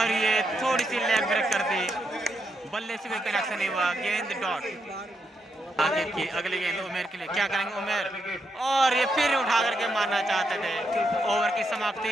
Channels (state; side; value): normal; both; correlation 0.81